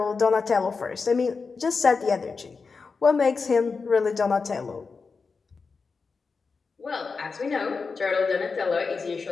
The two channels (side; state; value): right; quieter; 4.7 dB